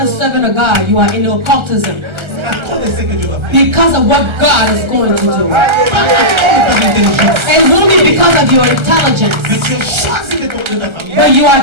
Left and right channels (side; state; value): left; late; 1.3 ms